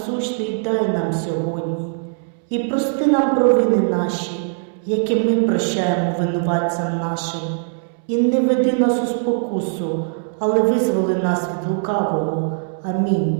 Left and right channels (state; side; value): silent; left; 65 dB below the other